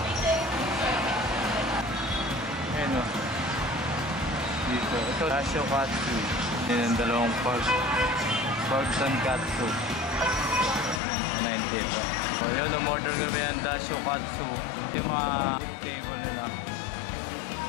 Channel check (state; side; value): drops out; right; at 11.0 s